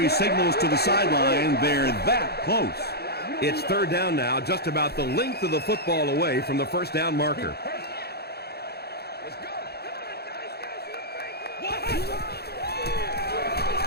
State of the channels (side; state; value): right; late; 0.47 ms